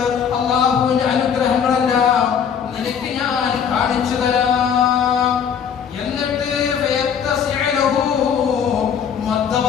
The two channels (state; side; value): quieter; right; 7.6 dB